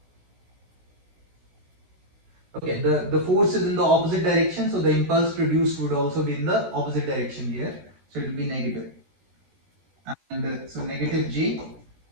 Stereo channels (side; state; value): left; late; 16 ms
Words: Okay, the force is in the opposite direction, so the impulse produced would also be in the opposite direction here. So it will be negative. And so negative J